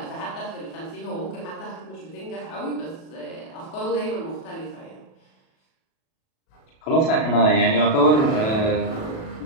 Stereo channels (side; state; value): right; late; 37 ms